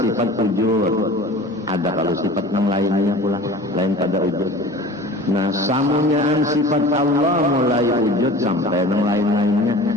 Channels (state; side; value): normal; both; correlation 0.40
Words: wujud. Ada kalau sifat yang lainnya pula, lain pada wujud. Nah, samunyaan sifat Allah mulai wujud sampai yang lain-lainnya.